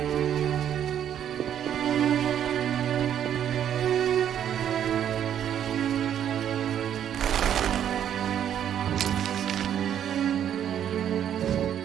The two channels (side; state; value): left; quieter; 9.8 dB